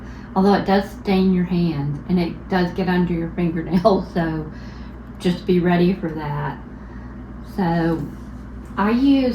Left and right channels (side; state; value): both; identical; correlation 1.00